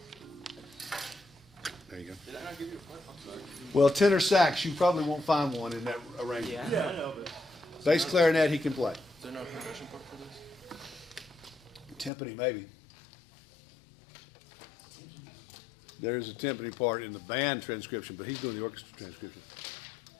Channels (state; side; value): drops out; right; at 12.1 s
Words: There you go. Well, tenor sax, you probably won't find one in that arrangement. Yeah, I know, but Bass clarinet, he can play. Is there no percussion part for this? Timpani, maybe. There's a timpani part in the band transcription, but he's doing the orchestra transcription.